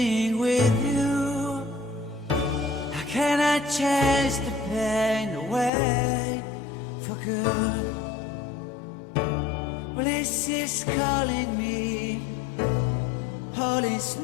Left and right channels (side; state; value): right; drops out; at 5.7 s